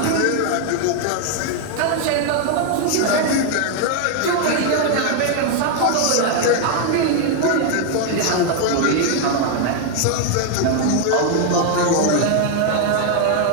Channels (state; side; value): different; both; correlation 0.00